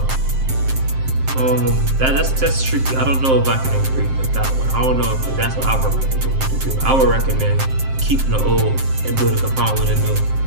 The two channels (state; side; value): late; left; 7.6 ms